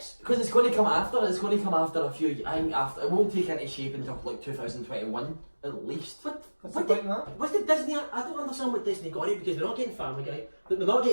Because it's going to come after. It's going to come after a few. I think after it won't take any shape until like 2021 at least. What did Disney? I don't understand what Disney got it because they're not getting Family Guy. They're not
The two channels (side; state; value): both; inverted; correlation -1.00